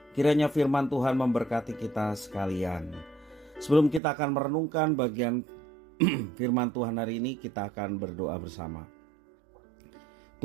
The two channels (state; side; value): drops out; left; at 4.0 s